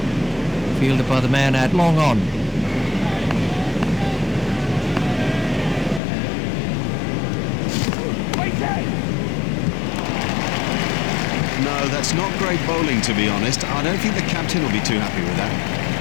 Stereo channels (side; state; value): right; drops out; at 6.0 s